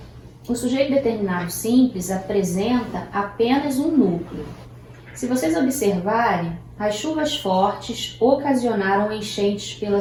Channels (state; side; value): identical; both; correlation 1.00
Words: o sujeito determinado simples apresenta apenas um núcleo. Se vocês observarem, as chuvas fortes ocasionaram enchentes